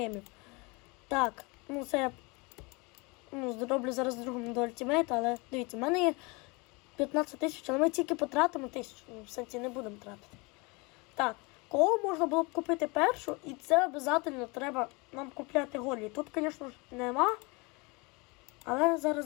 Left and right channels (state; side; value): quieter; right; 27.4 dB